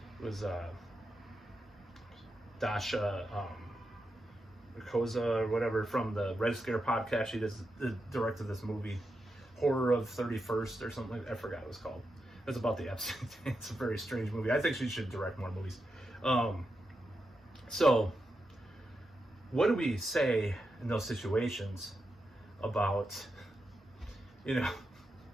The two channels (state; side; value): normal; both; correlation 0.87